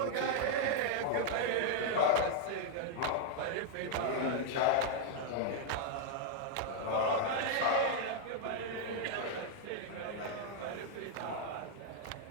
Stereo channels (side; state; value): both; different; correlation 0.00